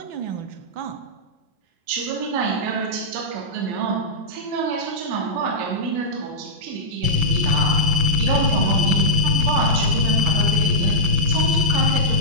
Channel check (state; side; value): late; left; 6.0 ms